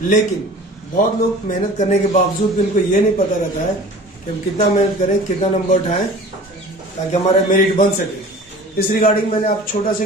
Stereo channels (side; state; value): both; normal; correlation 0.43